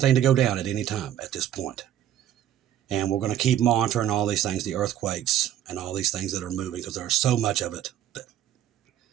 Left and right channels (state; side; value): quieter; left; 11.2 dB